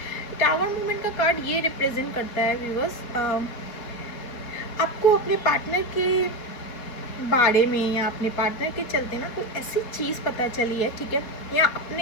टावर मूवमेंट का कार्ड ये रिप्रेजेंट करता है व्यूवर्स, आपको अपने पार्टनर के बारे में या अपने पार्टनर के चलते ना कोई ऐसी चीज़ पता चली है, ठीक है, या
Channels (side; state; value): right; late; 4.4 ms